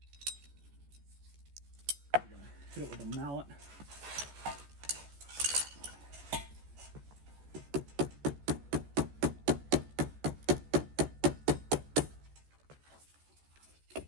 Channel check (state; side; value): late; left; 14 ms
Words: Hit it with a mallet.